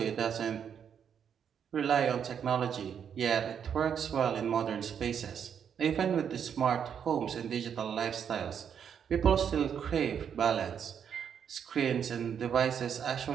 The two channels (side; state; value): left; quieter; 8.0 dB